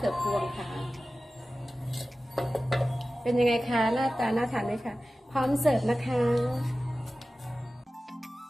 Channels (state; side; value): normal; both; correlation 0.95